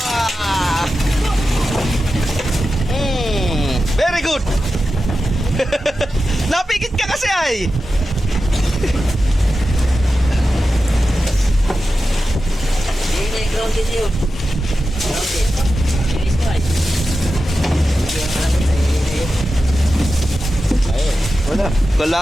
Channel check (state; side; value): normal; both; correlation 0.92